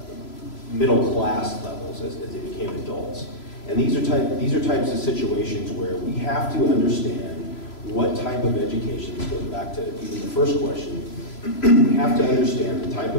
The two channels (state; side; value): late; right; 3.0 ms